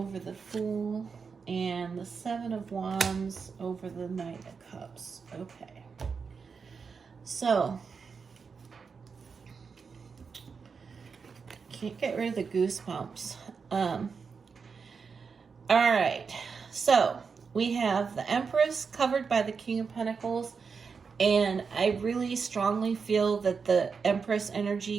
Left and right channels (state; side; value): quieter; left; 5.5 dB